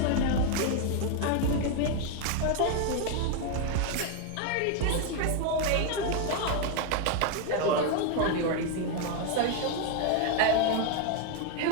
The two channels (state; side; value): different; both; correlation 0.01